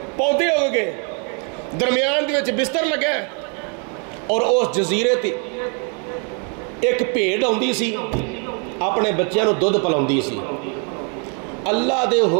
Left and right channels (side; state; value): left; quieter; 38.5 dB